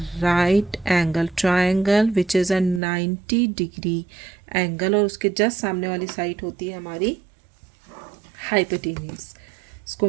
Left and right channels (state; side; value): drops out; left; at 2.8 s